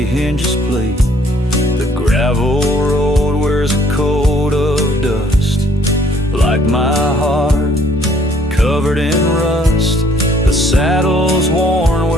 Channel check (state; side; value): normal; both; correlation 0.62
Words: hinges plea. The gravel road wears a coat of dust, like my heart, covered in rust. The saddle's worn